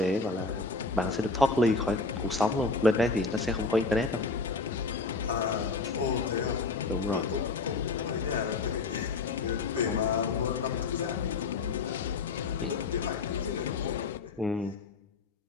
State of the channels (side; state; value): right; quieter; 3.9 dB